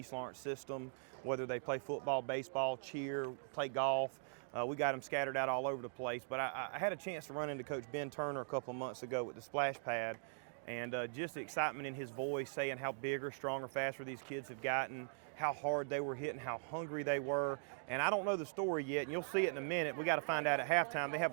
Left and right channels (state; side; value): silent; left; digital silence